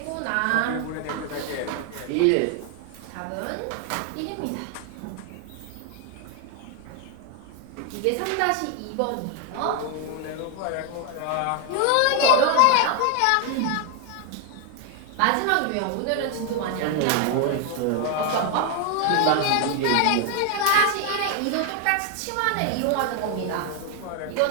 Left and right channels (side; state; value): both; different; correlation 0.01